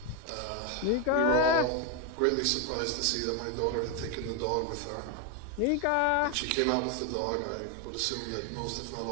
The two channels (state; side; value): different; both; correlation 0.01